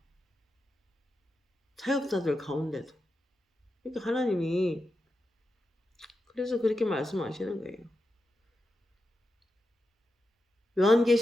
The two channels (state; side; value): normal; both; correlation 0.89